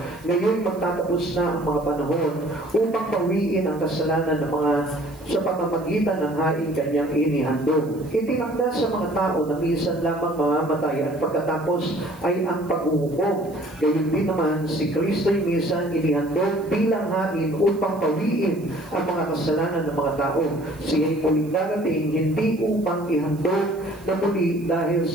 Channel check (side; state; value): right; noise; hiss, 26 dB below the sound